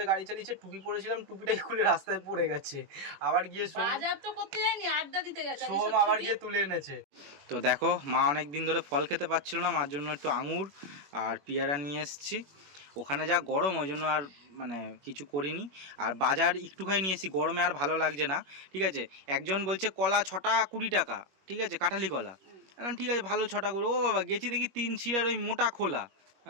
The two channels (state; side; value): late; left; 21 ms